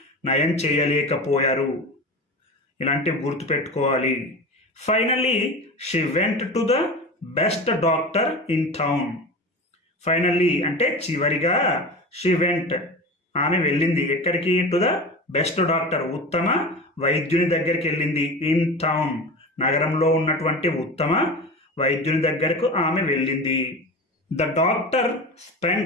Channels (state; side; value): normal; both; correlation 0.30